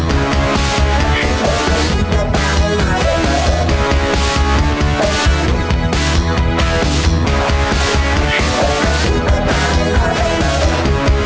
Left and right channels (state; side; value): identical; both; correlation 1.00